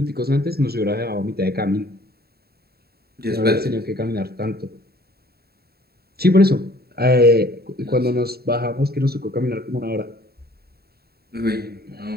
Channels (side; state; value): left; late; 0.46 ms